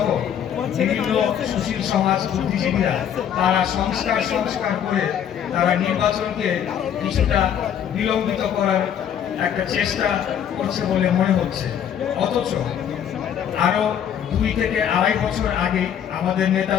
বিভিন্ন সুশীল সমাজ বুদ্ধিজীবীরা তারা সংস্কার করে তারা নির্বাচনকে কিছুটা বিলম্বিত করার একটা চেষ্টা করছে বলে মনে হচ্ছে। অথচ আরো 2 থেকে 2.5 বছর আগে আমাদের নেতা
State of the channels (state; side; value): quieter; right; 9.2 dB